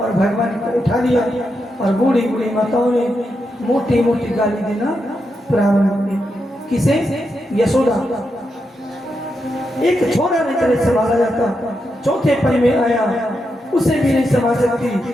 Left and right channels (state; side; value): normal; both; correlation 0.85